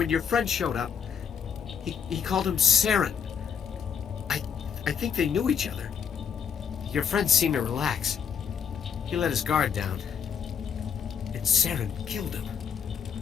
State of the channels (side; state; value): right; quieter; 7.1 dB